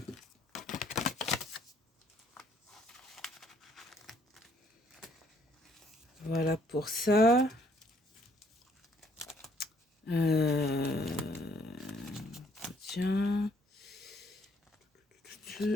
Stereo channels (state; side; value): normal; both; correlation 0.66